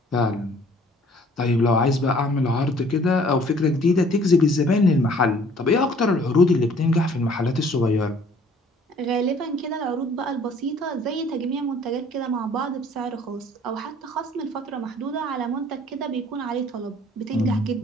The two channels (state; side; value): normal; both; correlation 0.55